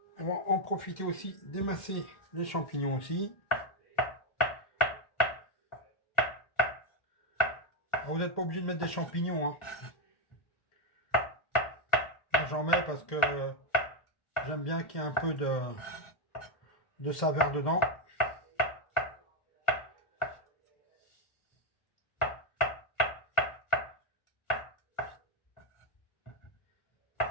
On va en profiter aussi d'émincer les champignons aussi. Alors, vous n'êtes pas obligé de mettre des champignons, hein. J'en mets parce que j'aime bien qu'il y ait un peu de saveur dedans.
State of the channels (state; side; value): late; right; 1.4 ms